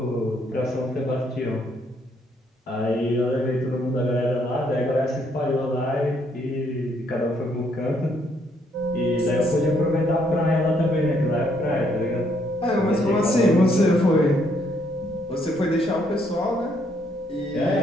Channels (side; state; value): both; normal; correlation 0.71